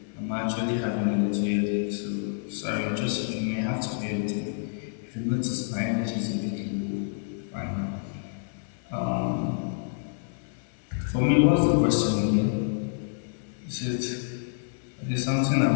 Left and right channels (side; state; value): right; silent; digital silence